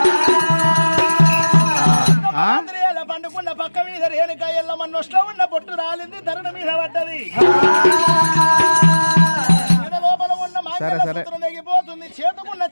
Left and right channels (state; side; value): inverted; both; correlation -1.00